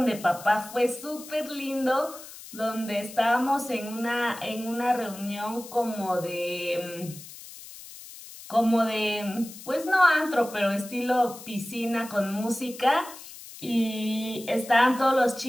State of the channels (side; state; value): left; noise; hiss, 15 dB below the sound